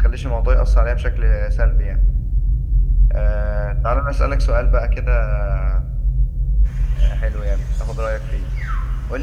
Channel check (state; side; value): identical; both; correlation 1.00